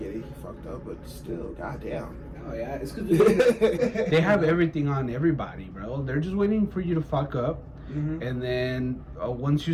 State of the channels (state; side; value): identical; both; correlation 1.00